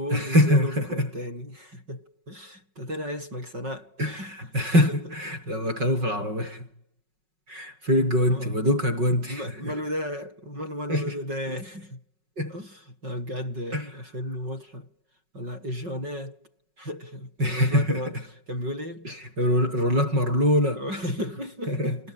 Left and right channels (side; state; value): left; late; 5.4 ms